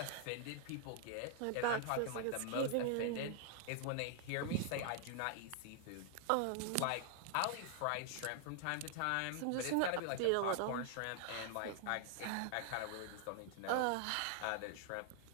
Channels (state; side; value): different; both; correlation 0.00